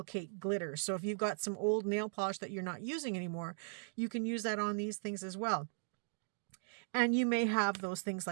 glitter. So if you've got some old nail polish that you're not using anymore, you can use that on these things as well. And you may have those things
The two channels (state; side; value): silent; left; digital silence